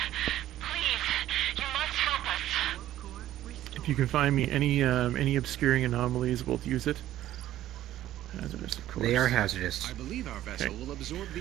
Please, you must help us. If you can find me any obscuring anomalies, we'll use it. Hazardous, of course. They are hazardous. I believe our vessel will absorb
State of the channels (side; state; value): left; quieter; 13.3 dB